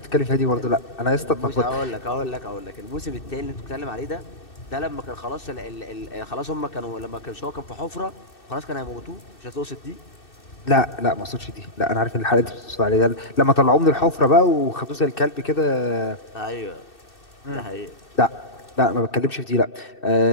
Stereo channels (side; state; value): right; late; 2.6 ms